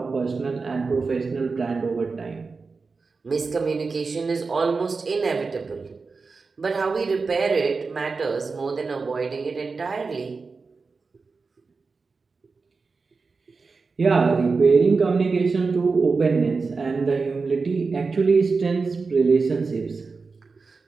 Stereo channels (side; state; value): left; quieter; 4.4 dB